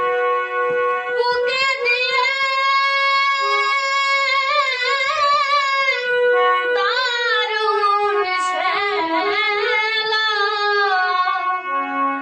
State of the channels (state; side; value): identical; both; correlation 1.00